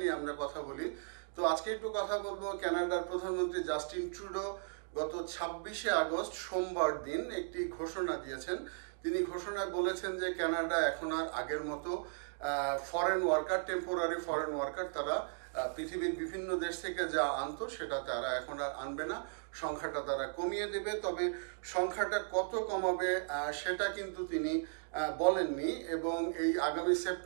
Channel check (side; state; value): left; silent; digital silence